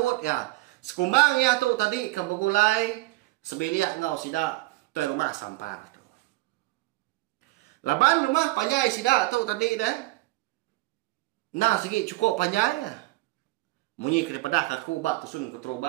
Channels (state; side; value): quieter; left; 20.6 dB